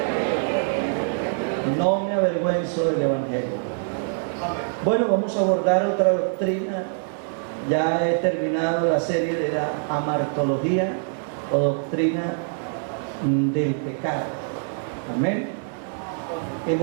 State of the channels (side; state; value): left; silent; digital silence